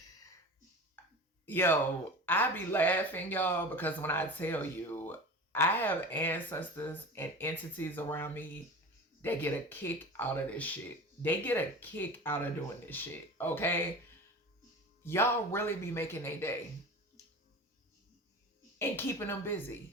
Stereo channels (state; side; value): normal; both; correlation 0.34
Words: Yo, I be laughing, y'all, because when I tell you, I have ancestors and entities around me that get a kick out of this shit. They get a kick out of doing this shit, okay? Y'all really be making a day and keeping them